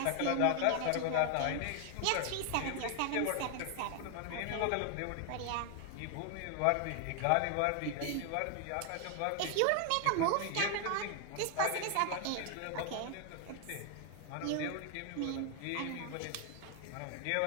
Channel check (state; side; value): different; both; correlation 0.00